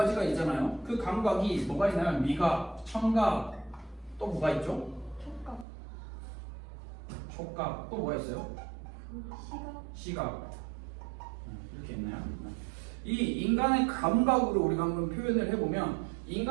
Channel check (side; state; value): left; drops out; at 5.7 s